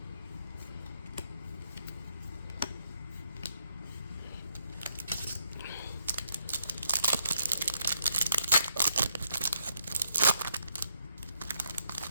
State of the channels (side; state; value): both; inverted; correlation -0.76